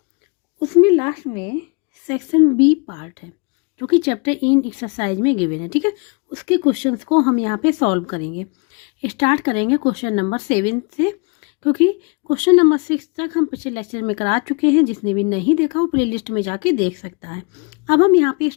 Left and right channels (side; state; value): right; quieter; 32.2 dB